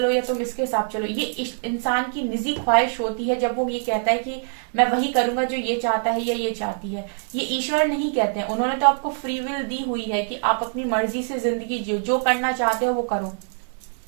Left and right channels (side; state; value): left; silent; 63 dB below the other